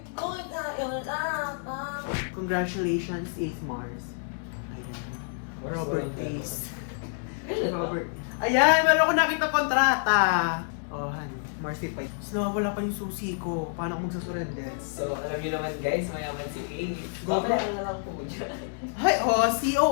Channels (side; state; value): right; silent; digital silence